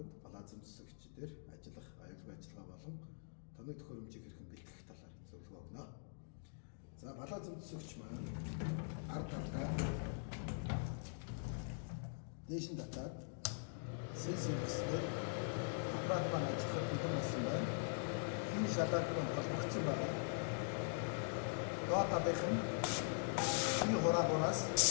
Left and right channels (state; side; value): silent; right; digital silence